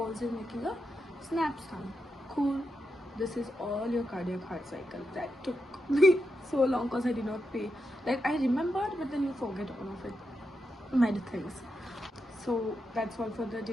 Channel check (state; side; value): normal; both; correlation 0.86